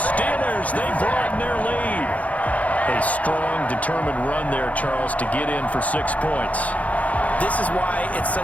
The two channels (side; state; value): right; late; 0.069 ms